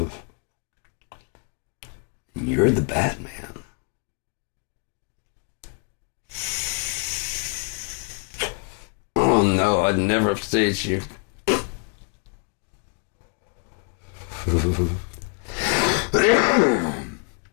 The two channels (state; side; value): quieter; right; 33.9 dB